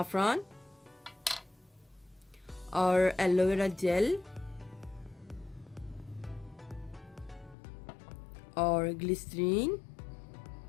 और एलोवेरा जेल और ग्लिसरीन।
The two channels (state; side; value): drops out; right; at 7.6 s